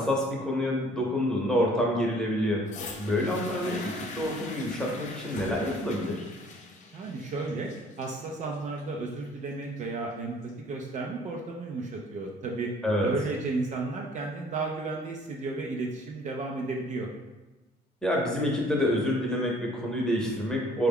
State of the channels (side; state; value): both; normal; correlation 0.56